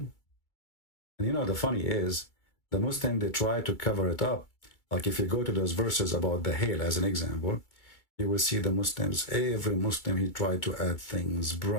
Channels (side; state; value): right; late; 2.3 ms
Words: And you know, the funny is, the Muslim, they try to cover it up. Like if you go to those verses about the hail as an example, you will see the Muslims, every Muslim, he tried to add things,